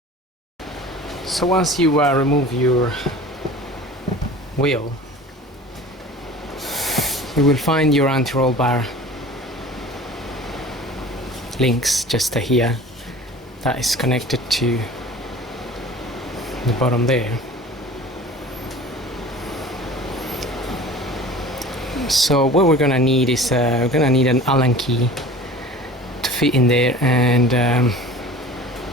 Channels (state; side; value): normal; both; correlation 0.41